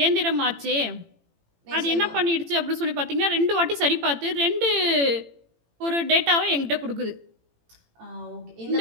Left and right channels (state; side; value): late; left; 18 ms